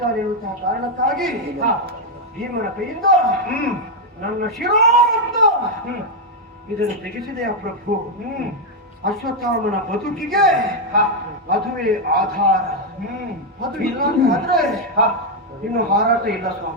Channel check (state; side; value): normal; both; correlation 0.01